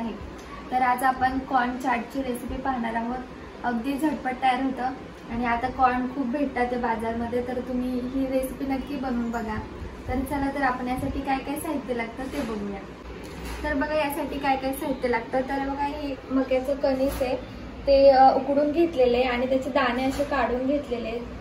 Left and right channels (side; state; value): both; identical; correlation 1.00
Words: तर आज आपण कॉर्न चाटची रेसिपी पाहणार आहोत। अगदी झटपट तयार होतं आणि आता कॉर्न खूप भेटतात ते बाजारमध्ये, तर तुम्ही ही रेसिपी नक्की बनवून बघा। तर चला तर आपण यासाठी काय काय साहित्य लागतं ते बघूया। तर बघा यासाठी काय काय साहित्य लागतं। तर बघा हे मक्याचं कणीस आहे, ते उकडून घेतलेले आणि त्याचे दाणे असे काढून घेतलेले,